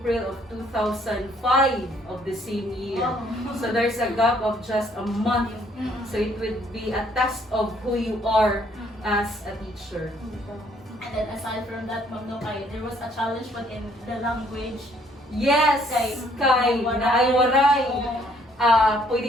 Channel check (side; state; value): both; normal; correlation 0.64